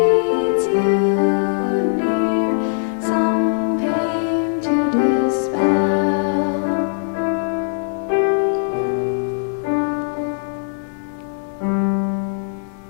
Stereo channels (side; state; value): right; silent; digital silence